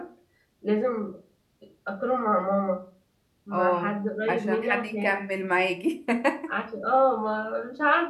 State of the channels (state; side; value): identical; both; correlation 1.00